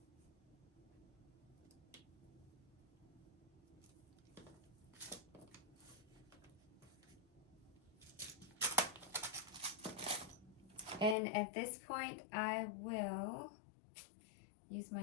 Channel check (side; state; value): right; drops out; at 11.2 s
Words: And at this point, I will use